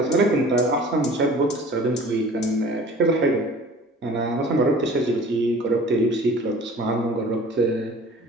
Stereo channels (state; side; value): normal; both; correlation 0.46